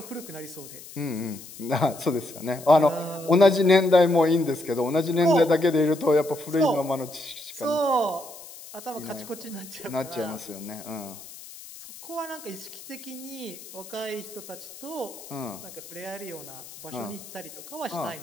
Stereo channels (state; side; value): noise; left; hiss, 16 dB below the sound